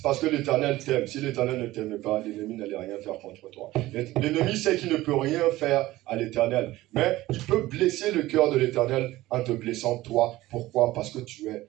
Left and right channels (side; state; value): left; quieter; 17.1 dB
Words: parce que l'Éternel t'aime. Si l'Éternel ne t'aime pas, l'ennemi n'allait rien faire contre toi. L'ennemi sait qu'il ne peut rien faire à l'Éternel. Mais il peut blesser le cœur de l'Éternel en te blessant toi. Pourquoi? Parce que tu es